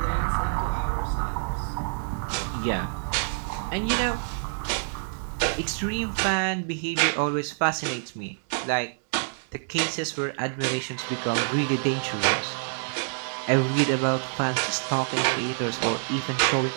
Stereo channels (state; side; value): silent; left; digital silence